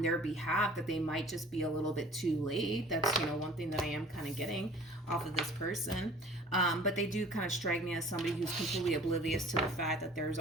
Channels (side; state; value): both; normal; correlation 0.47